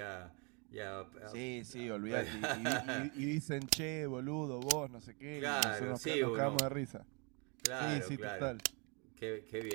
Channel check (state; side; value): quieter; left; 33.0 dB